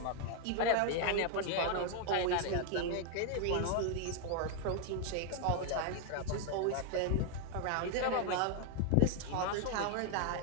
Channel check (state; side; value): different; both; correlation 0.00